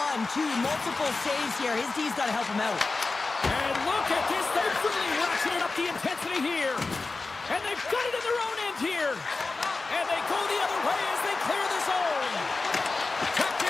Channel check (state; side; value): quieter; right; 3.8 dB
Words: two, multiple saves here. His D's got to help him out. And look at this. They've really ratcheted up the intensity here. And they've got it in their own end here. And they go the other way as they clear the zone.